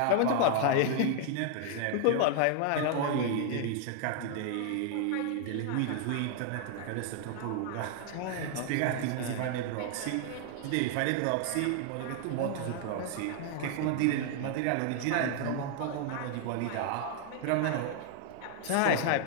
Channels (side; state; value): both; different; correlation 0.00